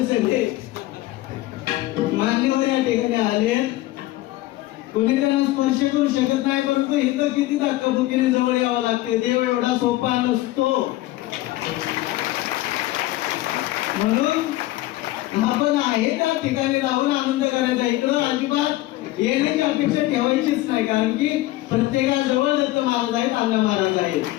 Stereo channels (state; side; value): quieter; right; 17.0 dB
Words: सगळे मान्यवर या ठिकाणी आले, कोणी त्यांना स्पर्श करू शकत नाही, परंतु इथं किती धक्काबुक्कीने जवळ यावं लागते. देव एवढा सोपा नसतो. म्हणून आपण आहे त्या ठिकाणी राहून आनंद करायचा. इकडं अजिबात येण्याची अपेक्षा ठेवायचीच नाही, कारण की प्रत्येकाजवळ दत्त महाराज आहेत, अण्णा महाराज आहेत.